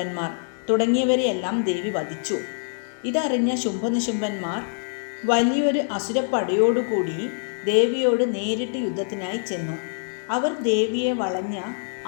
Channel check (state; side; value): silent; right; digital silence